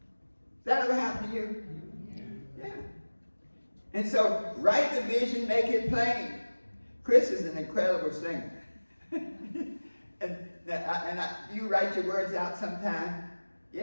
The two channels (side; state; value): both; inverted; correlation -1.00